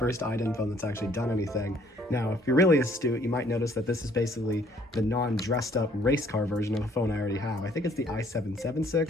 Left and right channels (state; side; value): normal; both; correlation 0.61